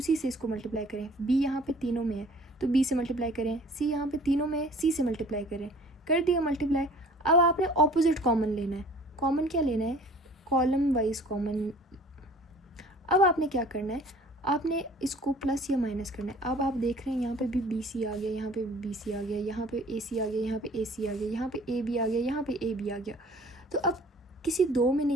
से इसको मल्टीप्लाई करें। बी यहाँ पे तीनों में है तो बी से मल्टीप्लाई करें। सी यहाँ पे तीनों में है, सी से मल्टीप्लाई करें। कर दिया मल्टीप्लाई। अब आपने ऑपोजिट कॉमन लेना है। कॉमन क्या लेना है, कॉलम वाइज कॉमन। अब आपने क्या करना है, आपने इसको प्लस या माइनस करना है। अब आप देख रहे हैं यहाँ पे भी बी सी आ गया, यहाँ पे भी बी सी आ गया, यहाँ पे ए सी आ गया, यहाँ पे ए सी आ गया, यहाँ पे ए बी आ गया, यहाँ पे ए बी आ गया। तो अब किसी दो में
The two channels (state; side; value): normal; both; correlation 0.50